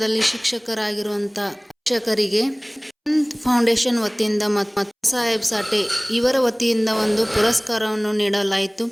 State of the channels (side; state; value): both; identical; correlation 1.00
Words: ಶಿಕ್ಷಕರಾಗಿರುವಂಥ ಶಿಕ್ಷಕರಿಗೆ ಫೌಂಡೇಶನ್ ವತಿಯಿಂದ ಮತ್ತು ಸಾಹೇಬ್ ಸಾಟೆ ಇವರ ವತಿಯಿಂದ ಒಂದು ಪುರಸ್ಕಾರವನ್ನು ನೀಡಲಾಯಿತು.